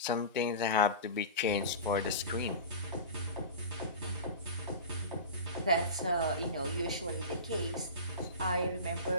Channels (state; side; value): inverted; both; correlation -0.30